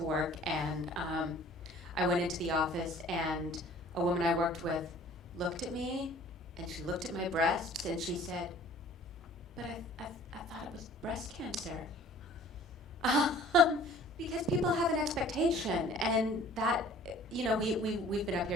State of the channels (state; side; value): normal; both; correlation 0.51